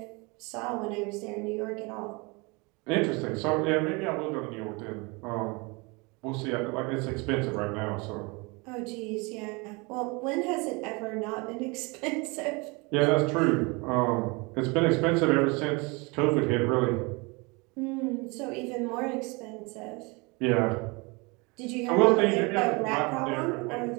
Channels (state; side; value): quieter; left; 27.9 dB